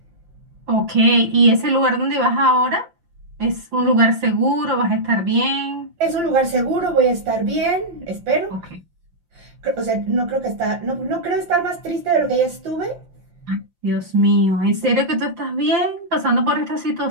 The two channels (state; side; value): late; left; 5.7 ms